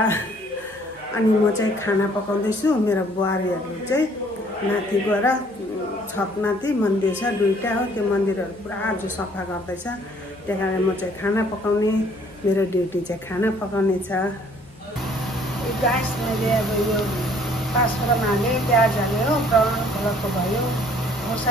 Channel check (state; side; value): noise; left; hum, 27 dB below the sound